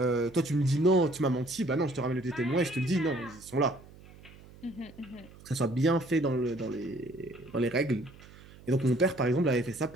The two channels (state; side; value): noise; right; hum, 21 dB below the sound